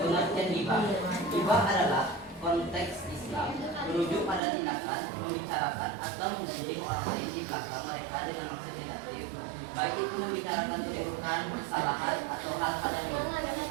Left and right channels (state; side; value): drops out; left; at 4.4 s